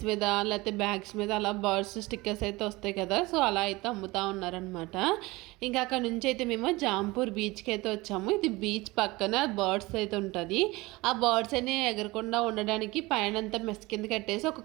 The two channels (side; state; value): left; quieter; 21.7 dB